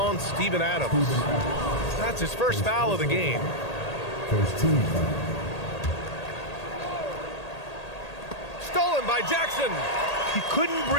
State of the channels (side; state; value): right; late; 1.8 ms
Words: Steven Adams. That's his first foul of the game. First team foul. Stolen by Jackson. He couldn't